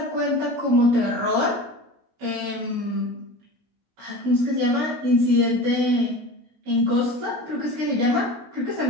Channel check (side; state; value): left; late; 16 ms